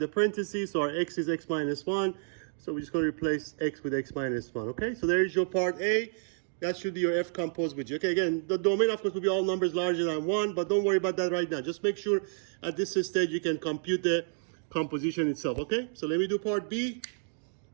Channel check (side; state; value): left; silent; digital silence